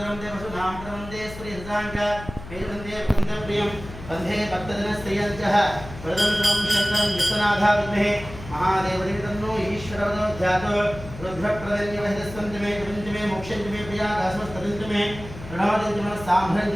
देवसुधाम प्रवंदे स्त्रीहृदांक वेदवंदे वंदप्रियम वंदे भक्तजनस्त्रियंचः वरदं सर्वं शङ्करं विश्वनाथा विद्महे महादेवदेव तन्नो ईश्वरवदो ध्यातो रुद्रप्रदन्यवहितस्वन्तमे कृतञ्चमे मोक्षञ्चमे प्रियादासमस्तदन्तमे प्रणवदञ्चमे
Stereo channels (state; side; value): noise; left; hum, 13 dB below the sound